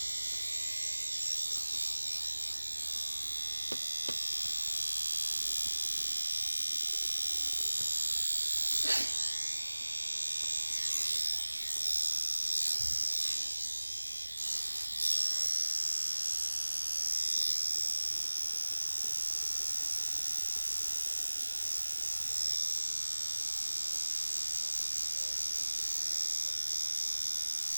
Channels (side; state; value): both; inverted; correlation -1.00